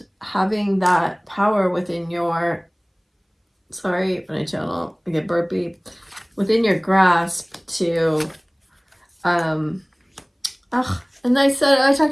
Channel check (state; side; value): identical; both; correlation 1.00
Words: having that power within your, sorry, when I channel, I get burpy, within your grasp to, and I